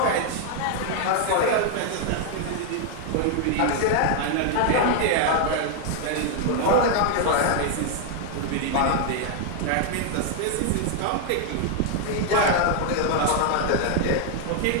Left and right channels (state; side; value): different; both; correlation 0.00